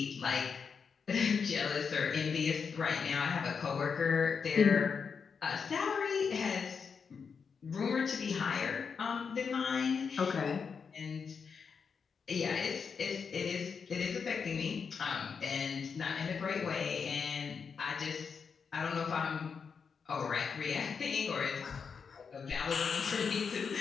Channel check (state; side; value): quieter; right; 5.9 dB